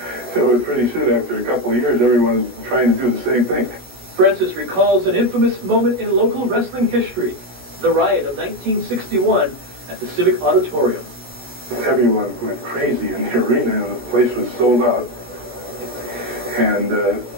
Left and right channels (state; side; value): late; left; 17 ms